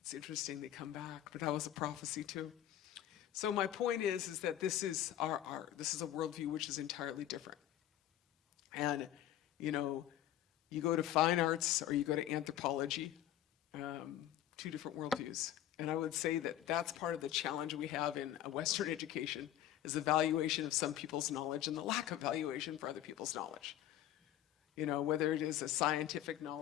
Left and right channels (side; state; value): right; quieter; 12.3 dB